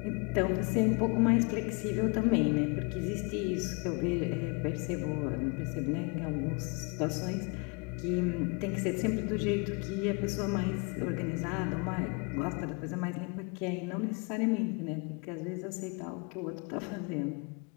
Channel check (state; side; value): quieter; right; 31.5 dB